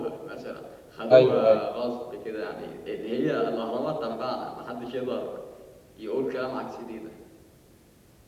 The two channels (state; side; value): identical; both; correlation 1.00